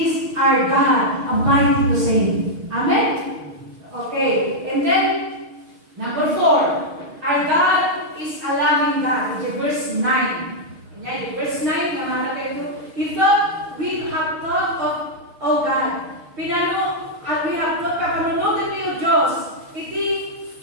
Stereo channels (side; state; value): left; late; 6.5 ms